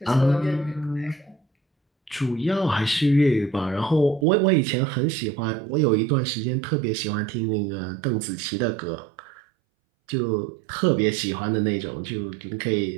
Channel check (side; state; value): left; drops out; at 4.2 s